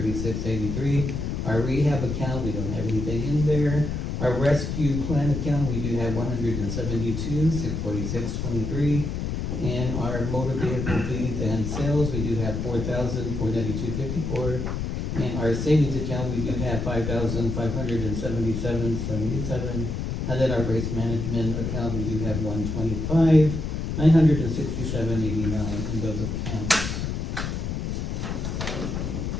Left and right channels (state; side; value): noise; left; rumble, 3 dB below the sound